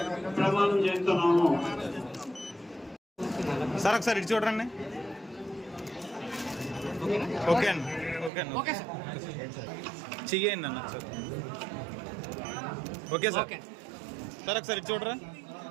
ప్రమాణం చేస్తున్నాము. సార్ ఒకసారి ఇటు చూడండి. ఓకే అండి, ఓకే అండి, చెయ్యండి అన్న సార్. Okay sir. సార్ ఒకసారి ఇటు చూడరా,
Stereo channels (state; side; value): drops out; left; at 8.3 s